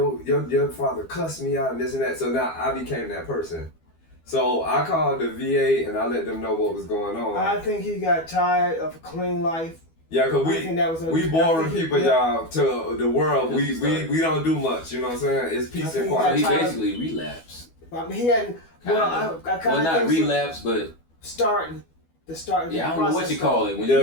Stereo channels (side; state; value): right; late; 12 ms